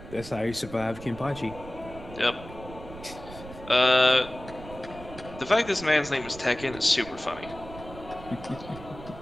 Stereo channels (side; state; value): right; noise; rumble, 15 dB below the sound